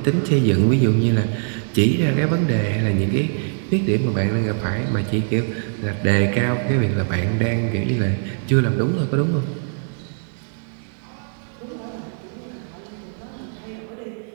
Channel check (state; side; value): silent; left; digital silence